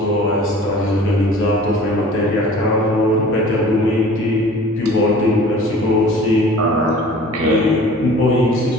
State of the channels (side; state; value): both; normal; correlation 0.46